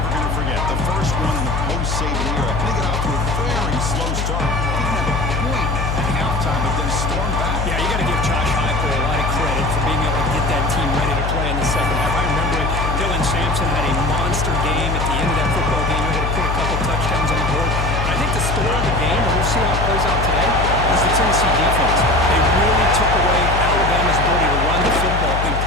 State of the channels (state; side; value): noise; left; hum, 1 dB below the sound